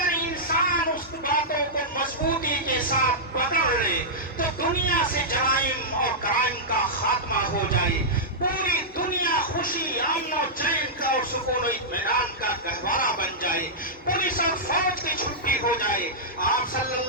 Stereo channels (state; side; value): normal; both; correlation -0.11